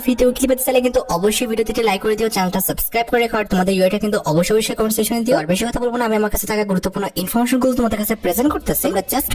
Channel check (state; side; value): identical; both; correlation 1.00